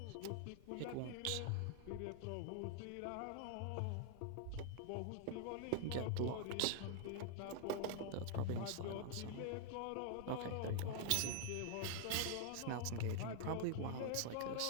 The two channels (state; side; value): different; both; correlation 0.00